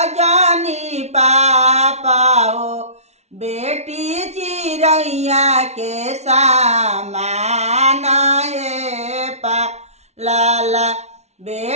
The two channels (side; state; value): left; late; 0.32 ms